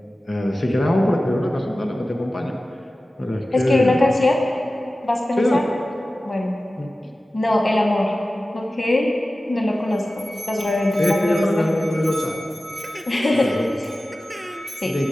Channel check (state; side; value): normal; both; correlation 0.95